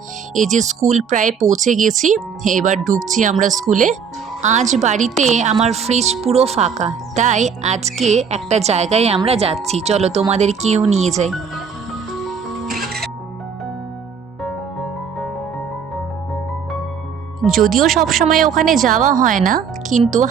এই যে স্কুল প্রায় পৌঁছে গেছি, এবার ঢুকছি আমরা স্কুলে। আজ বাড়িতে আমার ফ্রিজ পুরো ফাঁকা, তাই আজকে একটা জায়গায় আমরা যাচ্ছি, চলো তোমাদেরকেও নিয়ে যাই। যদিও সবসময় ওখানে যাওয়া হয় না, কিন্তু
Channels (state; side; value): quieter; left; 6.5 dB